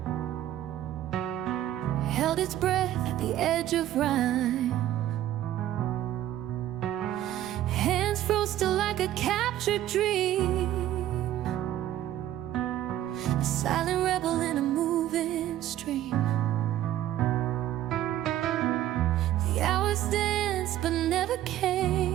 held its breath at the edge of rhyme. Hands froze still like a captured dream, a silent rebel in a moving stream. The hours danced but never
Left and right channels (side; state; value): left; quieter; 12.7 dB